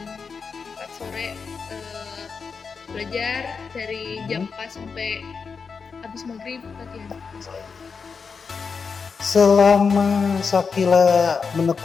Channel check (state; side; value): quieter; right; 5.4 dB